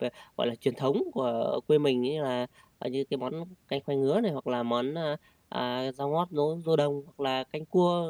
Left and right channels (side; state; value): both; identical; correlation 1.00